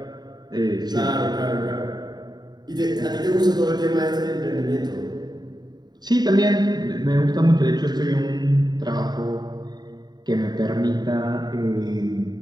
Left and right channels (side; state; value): left; late; 0.20 ms